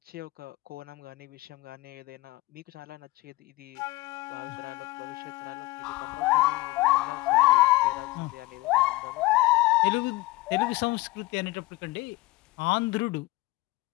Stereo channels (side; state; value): right; quieter; 20.5 dB